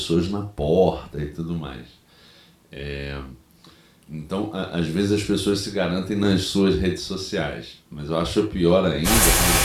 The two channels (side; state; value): both; identical; correlation 1.00